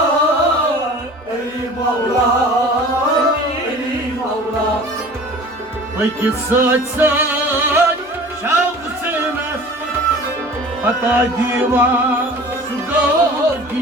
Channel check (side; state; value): right; noise; hum, 29 dB below the sound